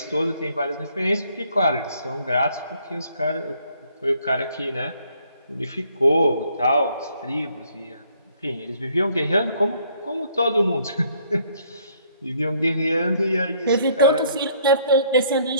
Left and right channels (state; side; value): inverted; both; correlation -0.65